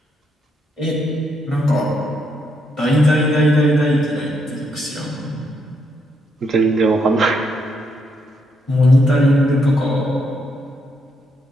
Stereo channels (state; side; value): normal; both; correlation 0.77